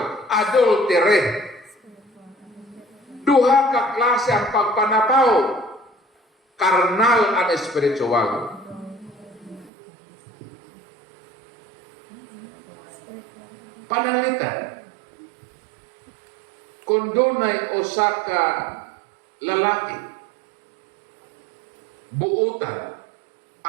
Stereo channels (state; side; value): drops out; left; at 9.7 s